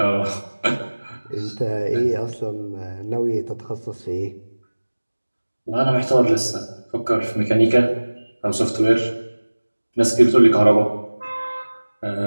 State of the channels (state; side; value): inverted; both; correlation -1.00